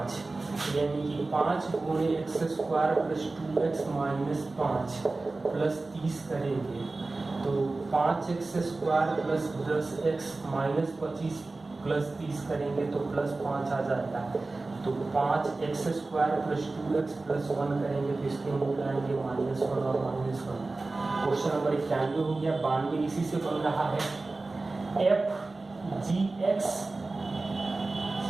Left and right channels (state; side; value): quieter; left; 3.4 dB